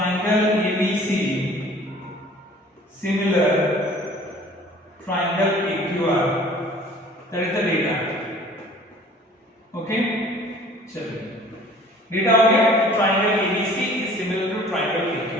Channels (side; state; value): both; normal; correlation 0.50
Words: ABC similar triangle PQR, that is the data। okay, चलिए डेटा हो गया, triangle ABC is similar to triangle